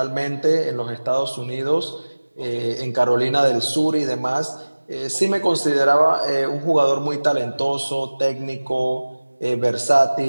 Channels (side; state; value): both; inverted; correlation -1.00